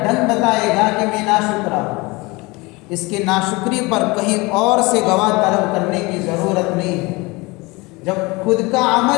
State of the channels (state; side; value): quieter; right; 24.3 dB